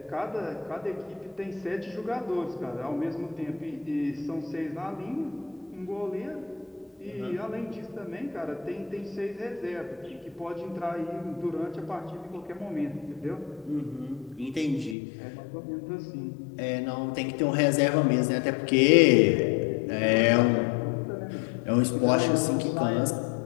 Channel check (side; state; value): right; drops out; at 15.0 s